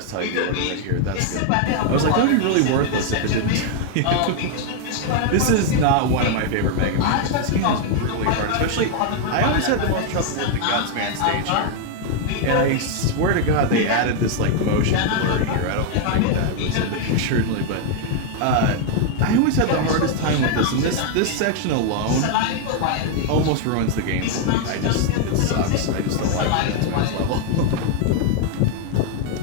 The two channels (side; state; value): both; different; correlation 0.00